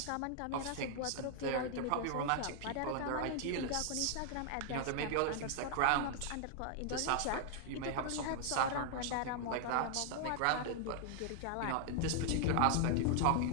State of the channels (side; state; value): both; different; correlation 0.00